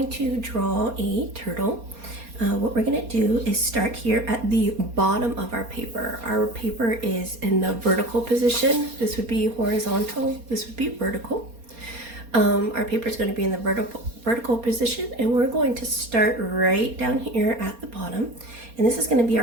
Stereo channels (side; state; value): left; late; 4.3 ms